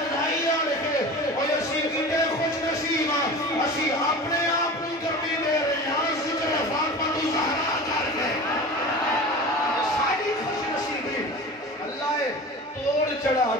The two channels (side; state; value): both; normal; correlation 0.34